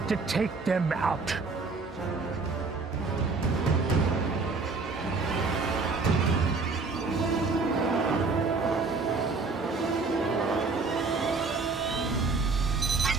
to take them out.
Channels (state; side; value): quieter; left; 4.1 dB